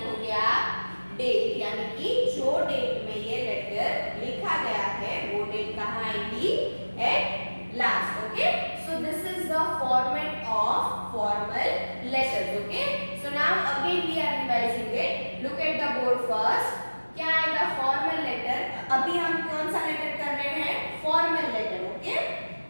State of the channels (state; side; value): inverted; both; correlation -1.00